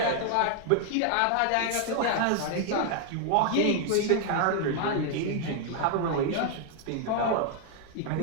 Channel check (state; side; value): different; both; correlation 0.00